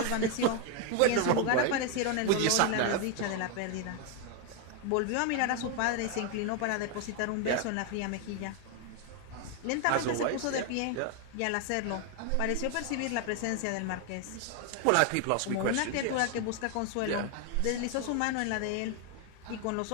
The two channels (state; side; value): different; both; correlation 0.01